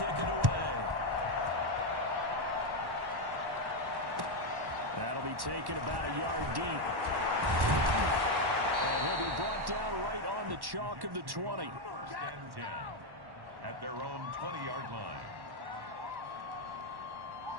it away. That'll be taken about a yard deep. And he'll be brought down right on the chalk of the 20. 1st and 10 at their own 20-yard line.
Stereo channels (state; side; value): late; left; 1.1 ms